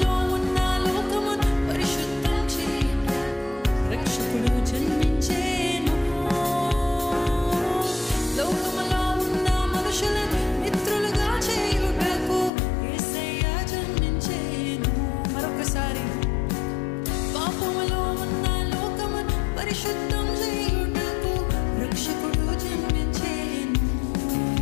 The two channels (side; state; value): right; drops out; at 12.5 s